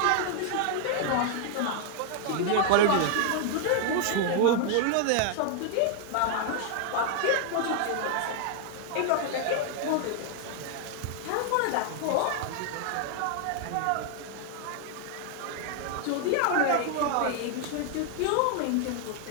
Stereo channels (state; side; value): different; both; correlation 0.00